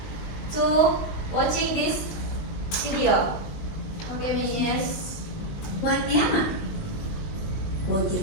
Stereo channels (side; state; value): right; late; 19 ms